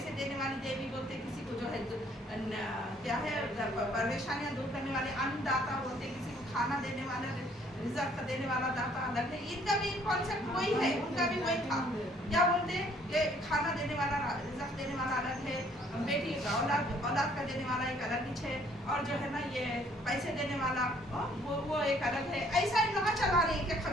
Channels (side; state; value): both; normal; correlation 0.62